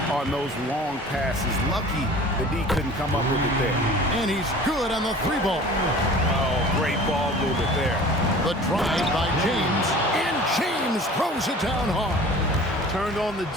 on those long passes. Lucky the D couldn't come up with it there. And he's good on the 3-ball. Oh, great ball movement there. The drive by James, and James throws it down hard. Turned on the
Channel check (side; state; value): both; normal; correlation 0.43